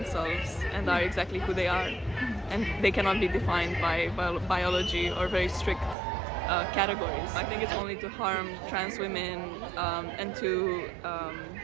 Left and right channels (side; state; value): left; drops out; at 6.0 s